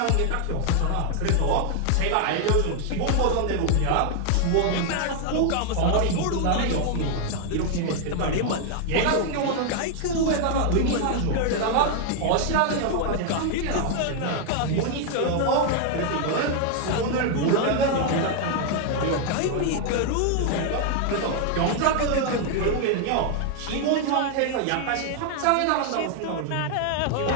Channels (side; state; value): both; different; correlation 0.00